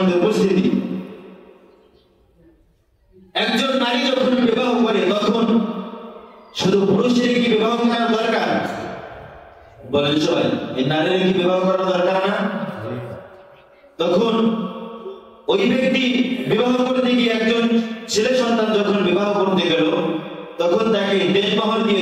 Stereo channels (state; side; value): identical; both; correlation 1.00